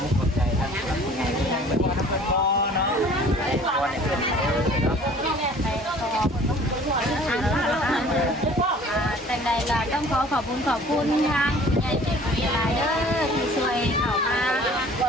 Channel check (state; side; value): normal; both; correlation 0.50